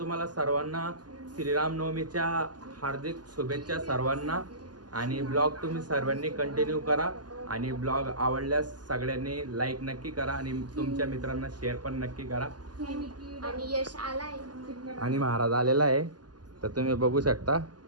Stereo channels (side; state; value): left; late; 0.70 ms